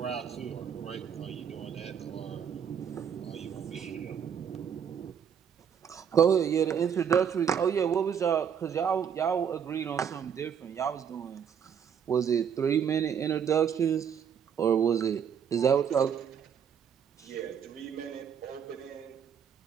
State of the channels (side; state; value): left; quieter; 7.8 dB